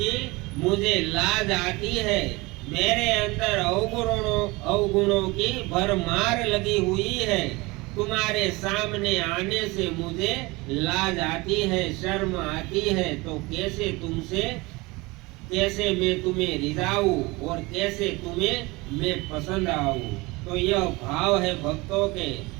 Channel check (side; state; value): left; quieter; 23.6 dB